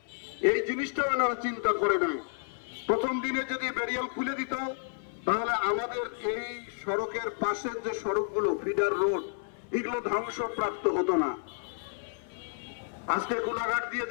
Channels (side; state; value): right; silent; 57 dB below the other